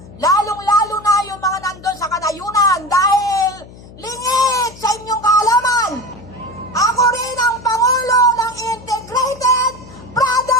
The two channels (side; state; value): left; noise; hum, 19 dB below the sound